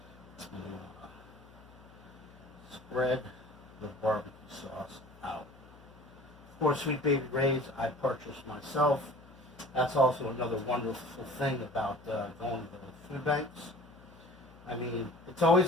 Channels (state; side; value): noise; left; hum, 22 dB below the sound